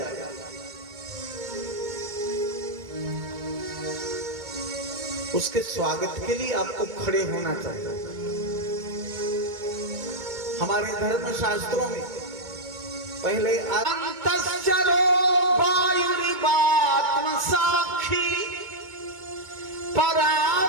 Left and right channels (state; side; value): late; left; 2.3 ms